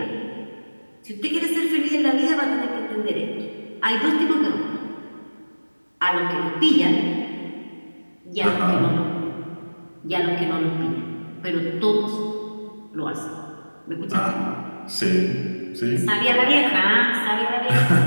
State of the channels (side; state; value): both; inverted; correlation -1.00